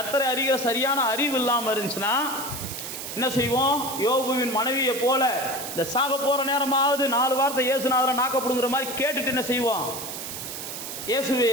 அறிகிற சரியான அறிவு இல்லாமல் இருந்துச்சுன்னா என்ன செய்வோம், யோபுவின் மனைவியை போல இந்த சாக போகிற நேரமாவது 4 வார்த்தை இயேசுநாதரை நாக்கப்படுங்கிற மாதிரி கேட்டுட்டு என்ன செய்வோம், இயேசுவே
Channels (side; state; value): right; noise; hiss, 8 dB below the sound